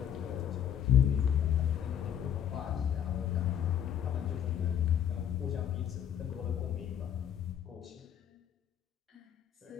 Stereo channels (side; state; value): right; quieter; 9.3 dB